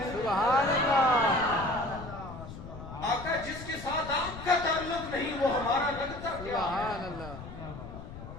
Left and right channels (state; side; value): noise; left; rumble, 12 dB below the sound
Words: سبحان اللہ. آقا جس کے ساتھ آپ کا تعلق نہیں وہ ہمارا لگتا کیا ہے؟ سبحان اللہ.